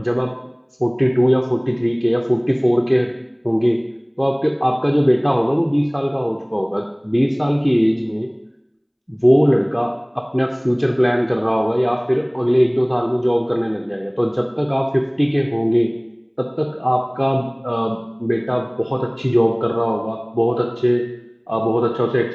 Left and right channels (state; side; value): identical; both; correlation 1.00